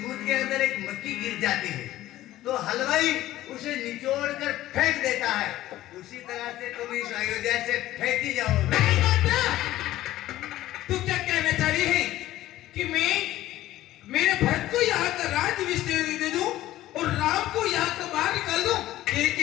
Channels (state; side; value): quieter; right; 14.9 dB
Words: के अंदर एक मक्खी गिर जाती है तो हलवाई उसे निचोड़ कर फेंक देता है, उसी तरह से तुम इस अयोध्या से फेंकी जाओगे। नहीं मंत्रा, तू क्या कहना चाह रही है कि मैं मेरे भक्त को यहाँ का राज्याभिषेक दे दूं और राम को यहाँ का बाहर निकाल दूं?